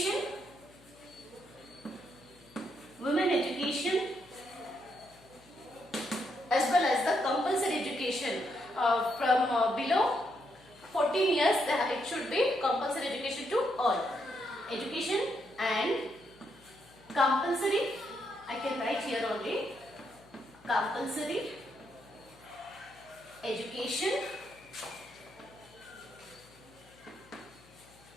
women education as well as the compulsory education from below 14 years. It should be compulsory education to all. Education and compulsory, I can write here only, compulsory education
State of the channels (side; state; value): left; noise; hum, 26 dB below the sound